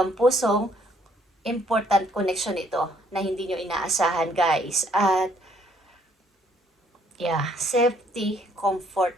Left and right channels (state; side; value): normal; both; correlation 0.65